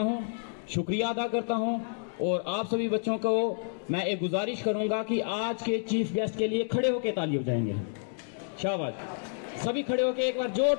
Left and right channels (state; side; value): silent; right; 58 dB below the other